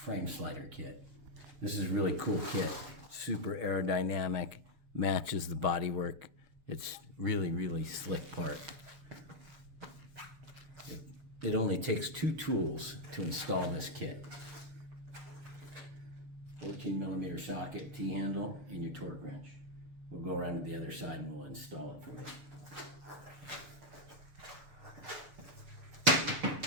slider kit. This is a really cool kit. Super aerodynamic, matches the bodywork. It's really slick part. It only takes 2 tools to install this kit. 14mm socket, T-handle, and your torque wrench. We'll go around to the other side and we'll install it for you.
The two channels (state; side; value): late; left; 6.8 ms